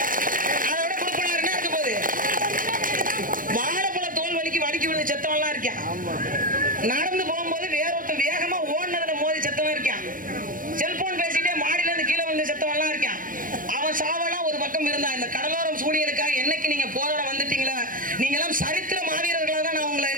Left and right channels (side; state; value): left; late; 0.40 ms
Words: அதை விட கொடுப்பன வேற என்ன இருக்க போகுது? வாழைப்பழ தோல் வலிக்கு விழுந்து செத்தவெல்லாம் இருக்கான். நடந்து போகும்போது வேறொருத்தன் வேகமா ஓடுனதுல மோதி செத்தவன் இருக்கான். செல்போன் பேசிட்டே மாடியில இருந்து கீழே வந்து செத்தவெல்லாம் இருக்கான். அவன் சாவெல்லாம் ஒரு பக்கம் இருந்தா, இந்த கடலோரம் சூழியலுக்காக என்னைக்கு நீங்க போராட வந்துட்டீங்களா, நீங்க எல்லாம் சரித்திர மாவீரர்களா தான் நான் உங்களை